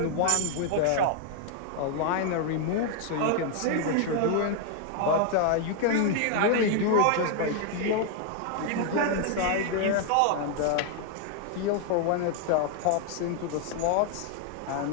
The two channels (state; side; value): different; both; correlation 0.00